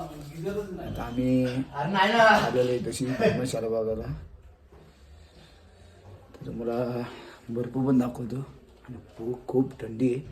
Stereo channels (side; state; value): both; identical; correlation 1.00